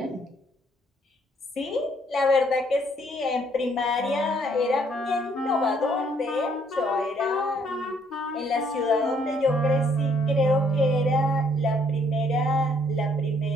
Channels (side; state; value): both; normal; correlation 0.66